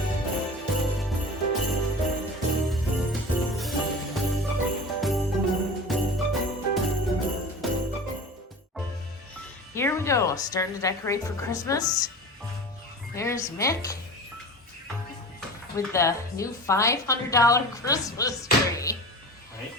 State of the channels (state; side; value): normal; both; correlation 0.34